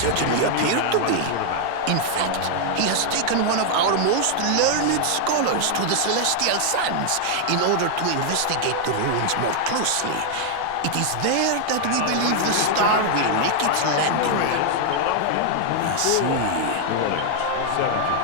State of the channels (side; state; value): both; different; correlation 0.00